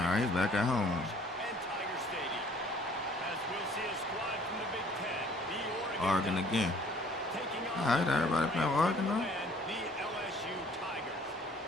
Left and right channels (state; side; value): normal; both; correlation 0.56